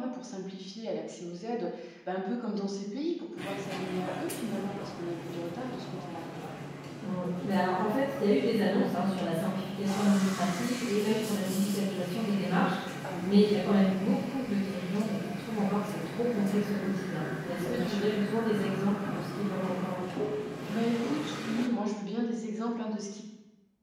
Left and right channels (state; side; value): identical; both; correlation 1.00